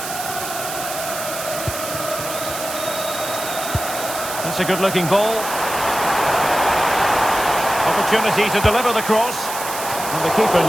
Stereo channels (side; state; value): right; noise; hiss, 7 dB below the sound